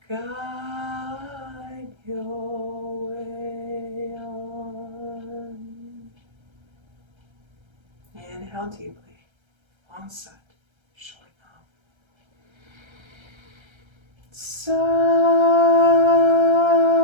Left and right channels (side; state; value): left; late; 1.3 ms